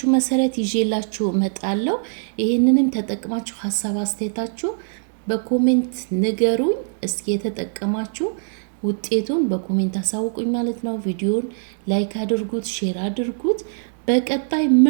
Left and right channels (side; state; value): left; silent; digital silence